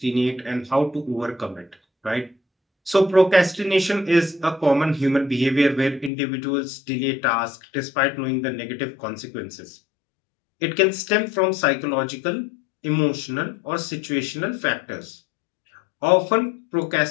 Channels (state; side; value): drops out; right; at 6.1 s